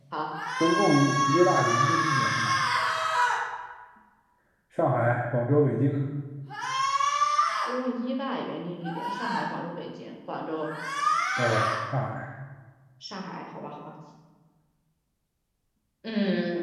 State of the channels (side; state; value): both; identical; correlation 1.00